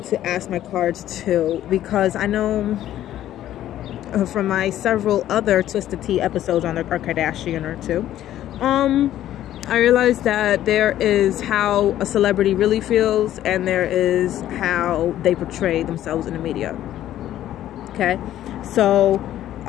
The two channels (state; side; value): quieter; right; 12.5 dB